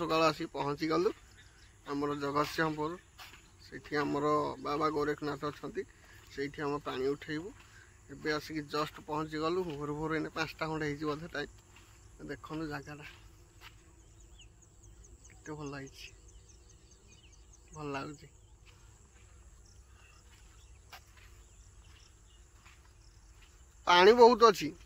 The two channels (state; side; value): identical; both; correlation 1.00